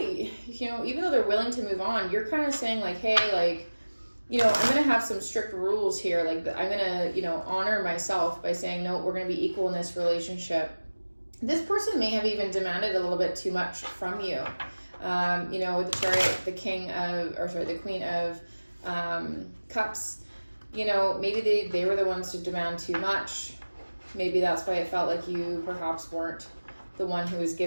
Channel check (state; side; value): inverted; both; correlation -1.00